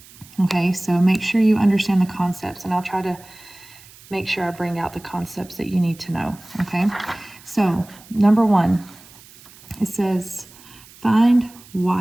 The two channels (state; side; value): noise; right; hiss, 22 dB below the sound